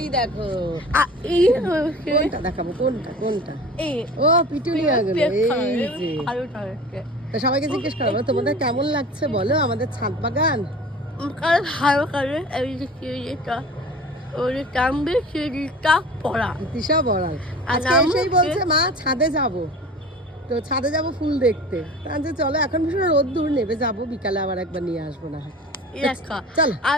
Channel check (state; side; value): normal; both; correlation 0.39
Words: দেখো, কোনটা দেখাবো, কোনটা কোনটা? ও পিটুনিয়া গুলো। এই যে তা সবাইকে জিজ্ঞেস করবো তোমাদের কেমন লাগছে বলো আমাদের ছাদ বাগান। ভালো করে তিশা বড়াল আজকে এসেই বলছে মা ছাদে যাব, তো ছাদে যাব ফুল দেখতে। যে চলো এখন ভীষণ রোদ্দুর, নেবে যাবো বিকালে আবার একবার নিয়ে আসবো না হয়। চলো